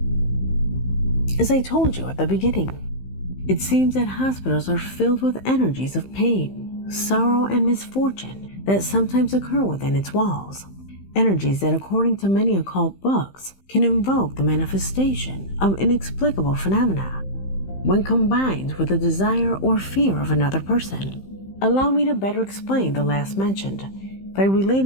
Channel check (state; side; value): late; right; 15 ms